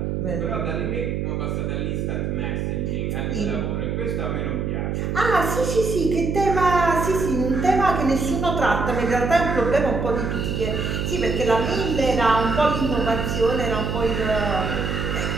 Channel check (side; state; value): right; noise; hum, 1 dB below the sound